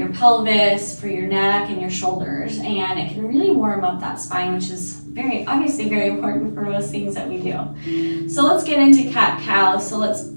pelvis, for your neck and your shoulders, and it can really warm up that spine, which is obviously very important for most things that we do. So let's get into cat-cow. So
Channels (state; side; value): inverted; both; correlation -1.00